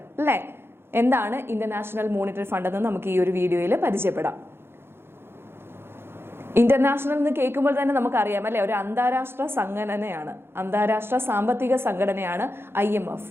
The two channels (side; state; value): left; late; 0.11 ms